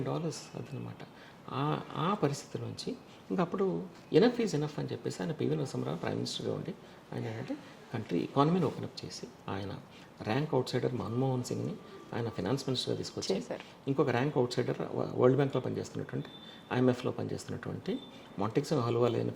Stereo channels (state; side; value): identical; both; correlation 1.00